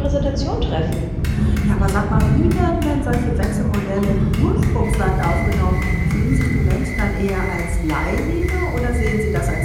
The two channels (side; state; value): both; identical; correlation 1.00